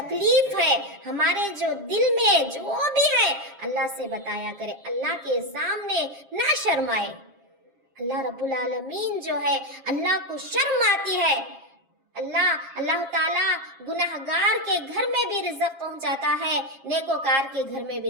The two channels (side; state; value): left; late; 7.4 ms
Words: ہے، ہمارے جو دل میں جو بھی ہے اللہ سے بتایا کرے، اللہ کے سامنے نہ شرمائے۔ اللہ رب العالمین جو ہے اللہ کو شرم آتی ہے۔ اللہ تعالیٰ گنہگار کے گھر میں بھی رزق پہنچاتا ہے، نیکوکار کے گھر میں